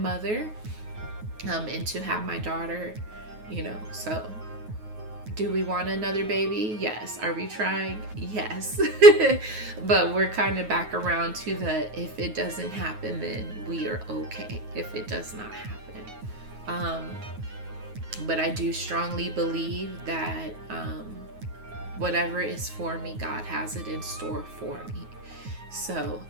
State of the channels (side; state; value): left; late; 9.4 ms